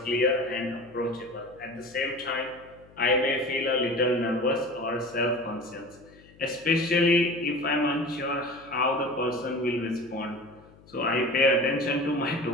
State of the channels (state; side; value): noise; left; hum, 25 dB below the sound